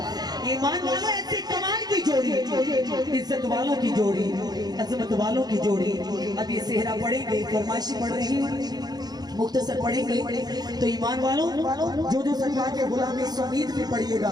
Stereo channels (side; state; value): left; late; 0.19 ms